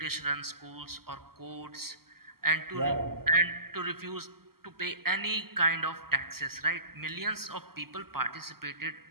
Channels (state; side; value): late; left; 0.94 ms